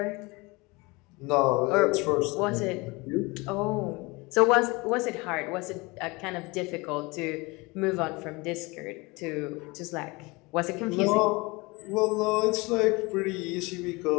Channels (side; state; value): right; quieter; 24.9 dB